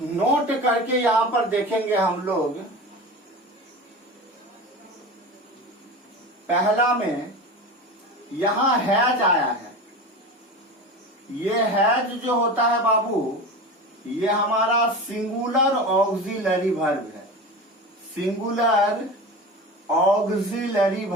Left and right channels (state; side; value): normal; both; correlation 0.30